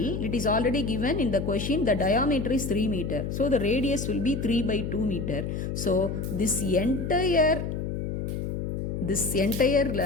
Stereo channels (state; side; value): noise; left; hum, 3 dB below the sound